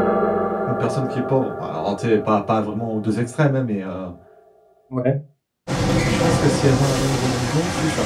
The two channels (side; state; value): both; identical; correlation 1.00